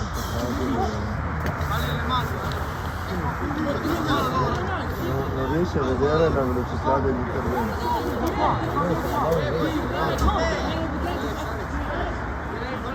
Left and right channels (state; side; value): identical; both; correlation 1.00